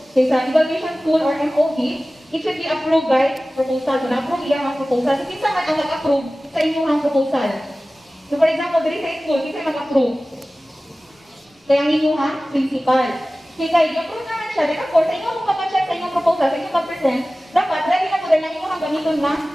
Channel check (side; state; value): both; normal; correlation 0.97